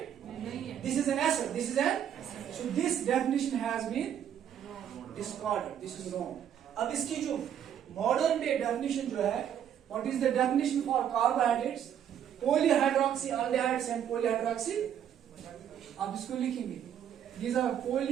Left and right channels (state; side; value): quieter; left; 9.5 dB